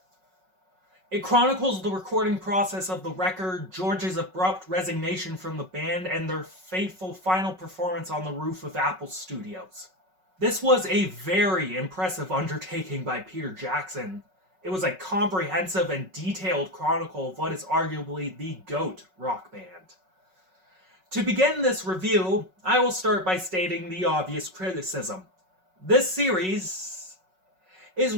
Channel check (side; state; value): left; late; 5.4 ms